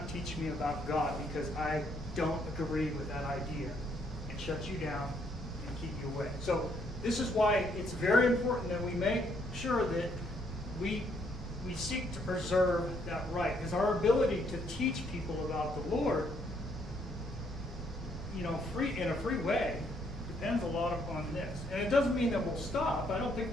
teach me about God because I don't agree with that idea, and shut you down and keep you away. So this is why it's very important that we make sure that we seek to preserve that right, because our ability to teach people about the Lord, in a free way, depends a lot upon this. And it doesn't mean that we'll stop. I don't think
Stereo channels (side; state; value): both; normal; correlation 0.71